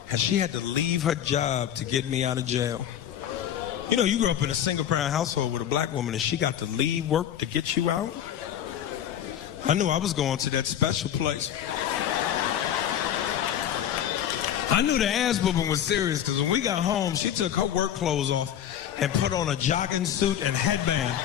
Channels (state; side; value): quieter; right; 10.2 dB